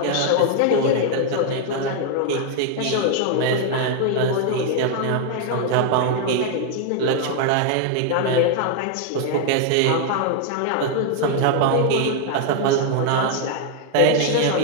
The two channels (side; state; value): both; different; correlation 0.00